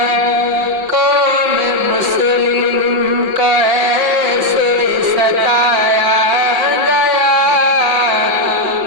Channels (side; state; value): left; late; 5.6 ms